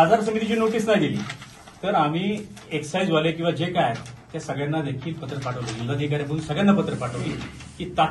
समितीची नोटीस नाही दिली तर आम्ही एक्साईजवाले किंवा जे काय त्या सगळ्यांना देखील पत्र पाठवलं. जिल्हाधिकाऱ्यांकडून सगळ्यांना पत्र पाठवली की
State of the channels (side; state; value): both; identical; correlation 1.00